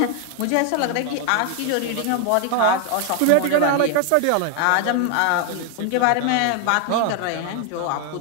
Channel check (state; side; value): different; both; correlation 0.00